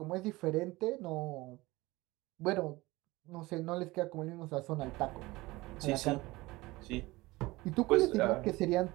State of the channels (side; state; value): left; quieter; 20.6 dB